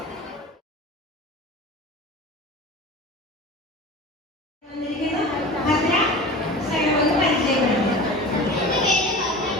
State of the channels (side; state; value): both; normal; correlation 0.35